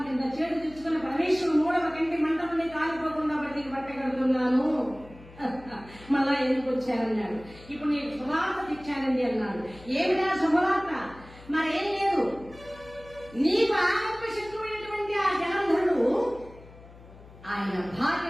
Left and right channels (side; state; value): left; noise; hum, 20 dB below the sound